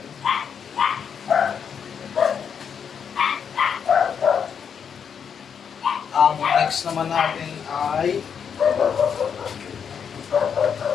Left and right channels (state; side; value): quieter; right; 7.2 dB